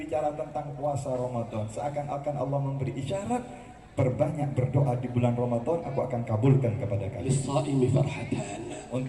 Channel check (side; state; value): both; identical; correlation 1.00